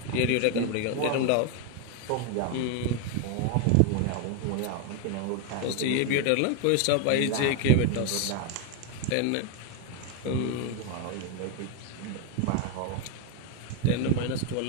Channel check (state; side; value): different; both; correlation 0.01